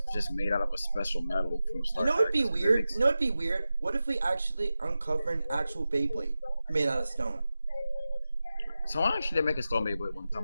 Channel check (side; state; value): both; inverted; correlation -0.93